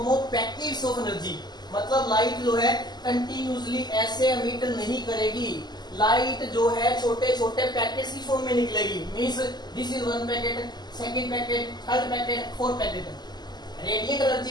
of packets of energy. मतलब लाइट जो है कंटिन्यूसली ऐसे एमिट नहीं करेगी. लाइट जो है छोटे छोटे पैकेट्स की फॉर्म में निकलेगी. Means this is one packet, second packet, third packet, fourth packet. Radiant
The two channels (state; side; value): late; right; 0.21 ms